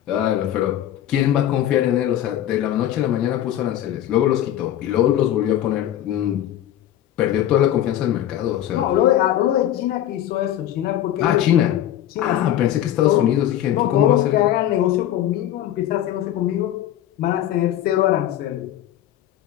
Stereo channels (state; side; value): quieter; right; 11.9 dB